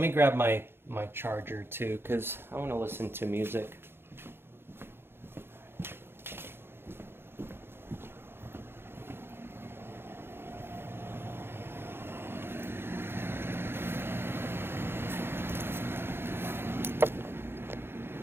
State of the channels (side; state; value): left; late; 0.11 ms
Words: grab my charger too, because I want to listen to music.